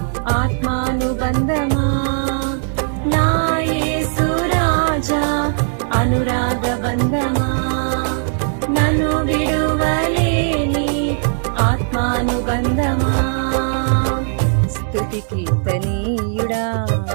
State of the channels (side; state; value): left; silent; digital silence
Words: ఆత్మానుబంధమా. నా యేసు రాజా అనురాగ బంధమా, నన్ను విడువలేని ఆత్మానుబంధమా. స్తుతి కీర్తనీయుడా,